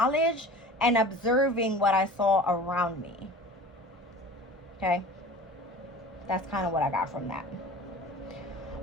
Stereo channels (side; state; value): both; normal; correlation 0.40